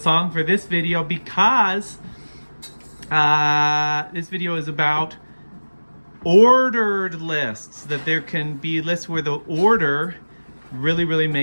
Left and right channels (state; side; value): inverted; both; correlation -1.00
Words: for this video because this video is about ordered lists, that there can be lists where the order really